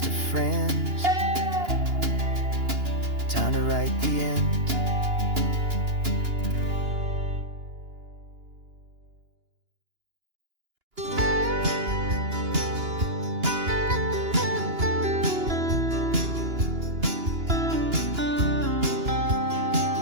of friends. Time to write the end.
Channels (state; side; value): late; left; 2.9 ms